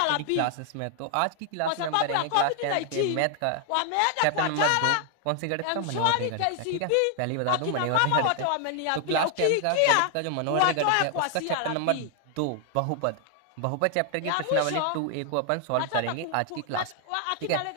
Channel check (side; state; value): both; different; correlation 0.00